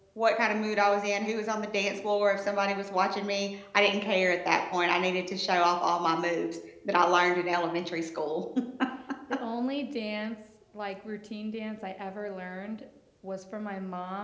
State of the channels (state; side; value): identical; both; correlation 1.00